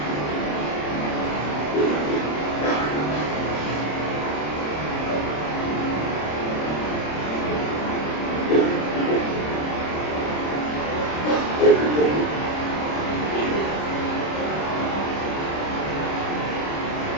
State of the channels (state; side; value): late; right; 26 ms